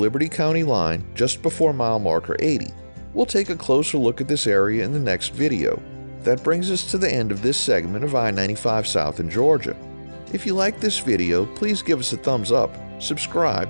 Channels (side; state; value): both; inverted; correlation -1.00